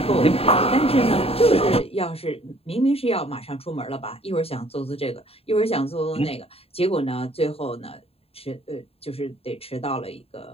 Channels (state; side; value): late; right; 0.28 ms